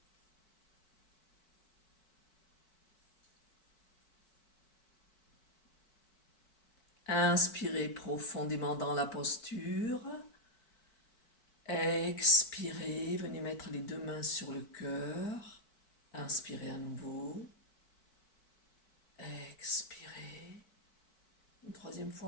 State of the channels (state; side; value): late; right; 4.6 ms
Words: Inspirez profondément dans la posture. Expirez, venez mettre les deux mains sur le cœur. Inspirez à nouveau. Expirez. Une troisième